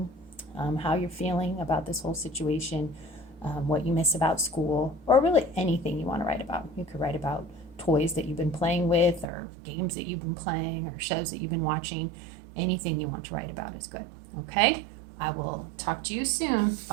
how you're feeling about this whole situation, what you miss about school, or really anything you want to write about. You could write about toys that you've been playing with, or games that you've been playing, or shows that you've been watching. Anything you want to write about is good. Okay? I will talk to you soon.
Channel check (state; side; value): drops out; left; at 9.2 s